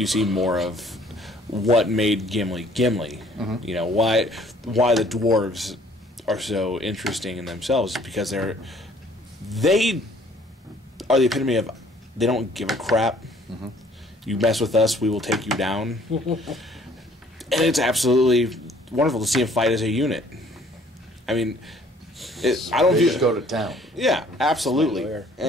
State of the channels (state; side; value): normal; both; correlation 0.58